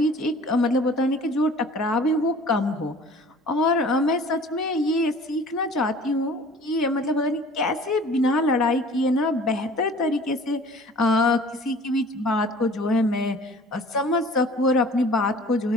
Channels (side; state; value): both; normal; correlation 0.47